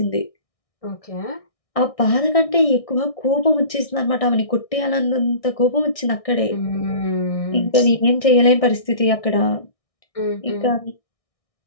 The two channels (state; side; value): late; right; 1.6 ms